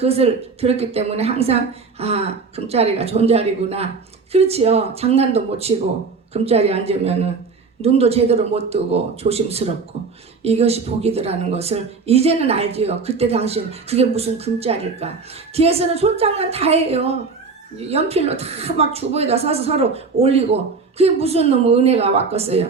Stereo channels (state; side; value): quieter; left; 4.7 dB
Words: 들었기 때문에 항상 금자리가 존자리구나. 그렇지요. 장난도 못 치고 금자리에 앉으면은 눈도 제대로 못 뜨고 조심스럽고 이것이 복이더라는 것을 이제는 알지요. 그때 당시엔 그게 무슨 금자리일까. 뒤에서는 손장난 다 해요. 연필로 다 막 주보에다 써서 서로 올리고 그게 무슨 놈의 은혜가